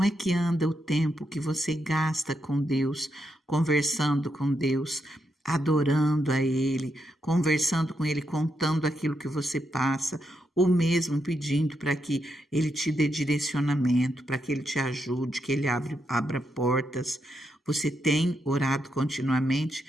é que anda o tempo que você gasta com Deus, conversando com Deus, adorando a Ele, conversando com Ele, contando aquilo que você passa, ou mesmo pedindo para que Ele te dê direcionamento, para que Ele te ajude, que Ele abra portas. Você tem orado continuamente?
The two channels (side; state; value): both; normal; correlation 0.82